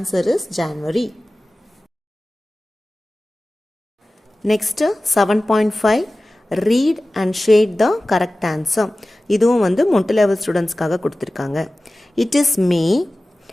is January. Next 7.5 read and shade the correct answer. இதுவும் மொட்டு லெவல் ஸ்டூடெண்ட்ஸ்க்காக கொடுத்துருக்காங்க. It is May,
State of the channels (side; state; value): both; normal; correlation 0.97